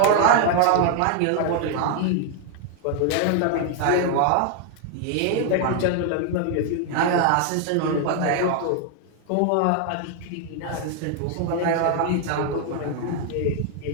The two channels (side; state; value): both; different; correlation 0.00